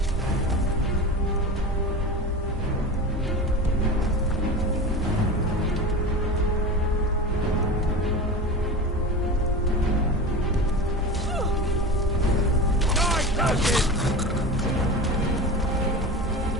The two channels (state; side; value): normal; both; correlation 0.29